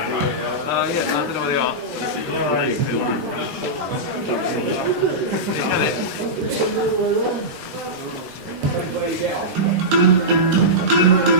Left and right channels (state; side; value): late; left; 13 ms